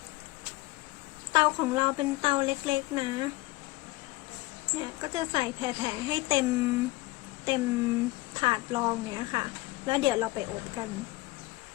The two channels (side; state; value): right; quieter; 20.4 dB